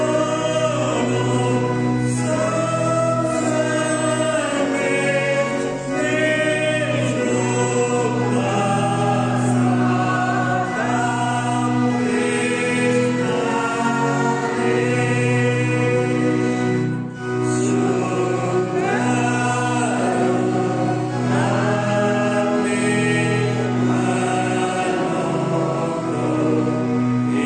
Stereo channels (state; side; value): identical; both; correlation 1.00